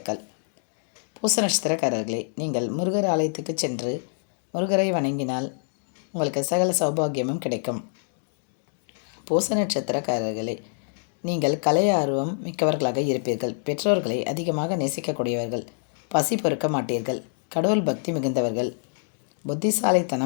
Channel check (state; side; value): silent; right; digital silence